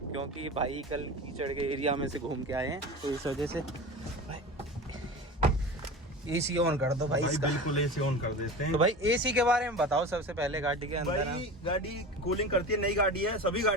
भाई कल कीचड़ के एरिया में से घूम के आए हैं, तो इस वजह से भाई AC ऑन कर दो भाई इसका। बिल्कुल AC ऑन कर देते हैं। तो भाई AC के बारे में बताओ सबसे पहले गाड़ी के अंदर। भाई गाड़ी कूलिंग करती है, नई गाड़ी है, सभी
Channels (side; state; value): both; normal; correlation 0.32